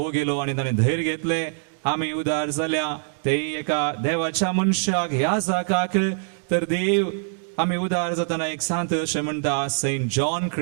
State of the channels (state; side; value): silent; left; digital silence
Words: गेलो आनी ताणें धैर्य घेतलें, आमी उदार जाल्या. ते एका देवाच्या मनशाक ह्या जागाक तर देव आमी उदार जातना एक सांत अशें म्हणटा, सेंट जॉन